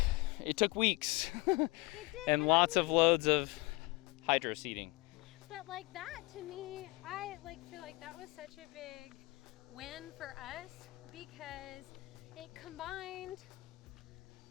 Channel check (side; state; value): right; quieter; 23.6 dB